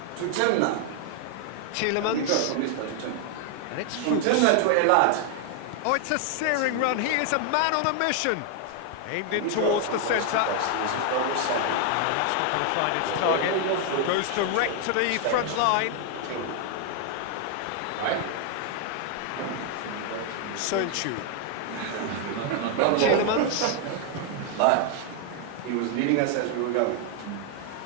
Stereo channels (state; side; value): different; both; correlation 0.00